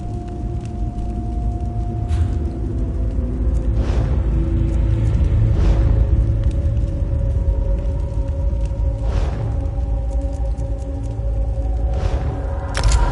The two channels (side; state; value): both; identical; correlation 1.00